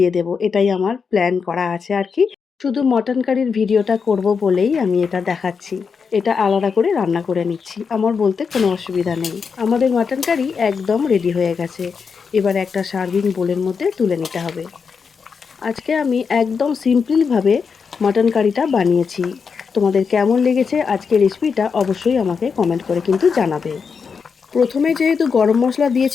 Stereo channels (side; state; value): right; quieter; 5.7 dB